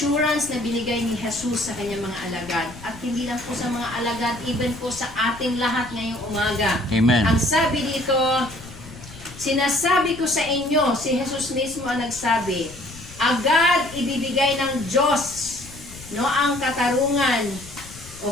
na binigay ni Jesus sa kanyang mga alagad. At hindi lang po sa mga alagad, even po sa ating lahat ngayong umaga. Amen. Ang sabi dito, sinasabi ko sa inyo, si Jesus mismo ang nagsabi, agad ibibigay ng Diyos ang katarungan,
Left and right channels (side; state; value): left; noise; rumble, 17 dB below the sound